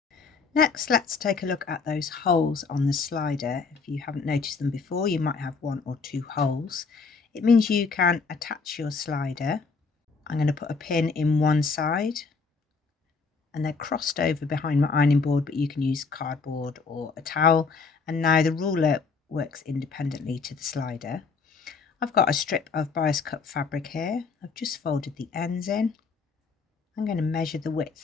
Next, let's take a look at those holes on the slider. If you haven't noticed them before, you might have one or two holes. It means you can attach your slider. I'm going to put a pin in one side, and they're crossed over behind my ironing board, but you can use cardboard or a towel. And now the ruler works independently to the slider. I've got a strip of bias cut fabric here. I've just folded the ends in. I'm going to measure the width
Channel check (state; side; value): quieter; right; 4.7 dB